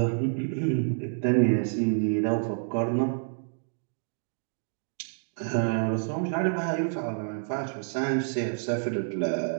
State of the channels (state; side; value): silent; left; digital silence